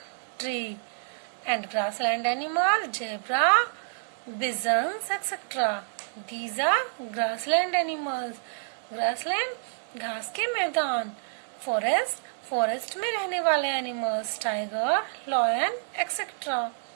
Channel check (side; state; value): left; silent; digital silence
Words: tree. And grassland animal, zebra, bisons, etc. These are grassland animals. Grassland घास के मैदान. Forest में रहने वाले animals, tiger, lion, etc.